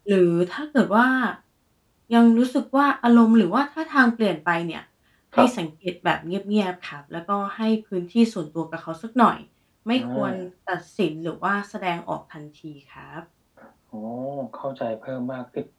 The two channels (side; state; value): both; identical; correlation 1.00